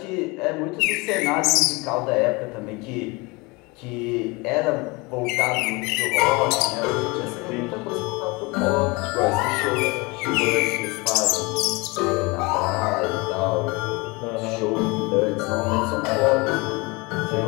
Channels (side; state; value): right; quieter; 25.7 dB